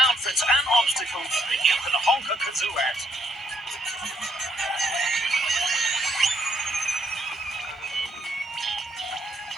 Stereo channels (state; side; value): normal; both; correlation 0.70